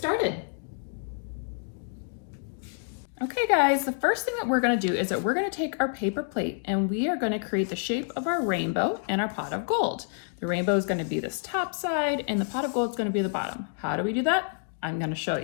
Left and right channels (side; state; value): right; silent; digital silence